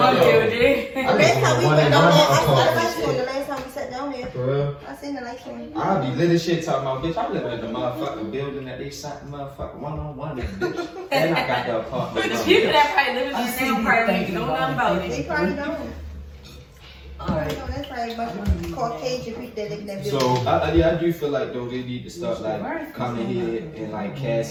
building. building. The last time we went down there, I saw the lights apartment. on. The last time we sat down there, For real? I seen the lights on. I'll be lit as shit talking about, bitch, I live in the motherfucking building that they shot the motherfucking one-on-one in, bitch. And I got the apartment. But the people that probably live in I there see now you probably thinking don't know about about it. it. They probably don't. Alright. No, that's probably a bunch of Caucasian people that live in that building. So, I do feel like, though, they need to start, like, coming here and, like,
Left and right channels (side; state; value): both; identical; correlation 1.00